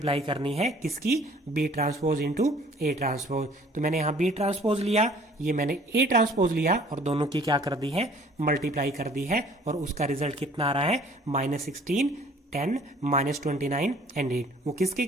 करनी है, किसकी, B transpose into A transpose. तो मैंने यहाँ बी ट्रांसपोज लिया, ये मैंने ए ट्रांसपोज लिया और दोनों की क्या कर दी है, मल्टीप्लाई कर दी है। और उसका रिजल्ट कितना आ रहा है, -16 10 -29 एंड 8। वो किसके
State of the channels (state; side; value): normal; both; correlation 0.54